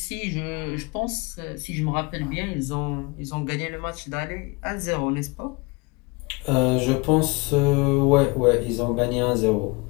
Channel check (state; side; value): quieter; right; 27.2 dB